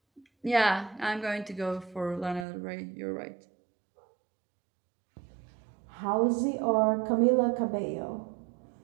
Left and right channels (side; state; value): left; drops out; at 2.5 s